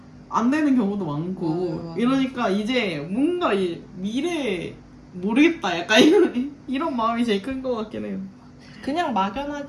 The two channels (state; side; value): identical; both; correlation 1.00